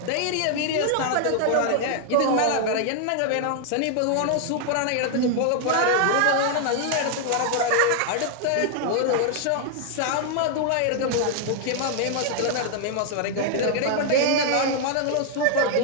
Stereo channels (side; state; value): both; different; correlation 0.00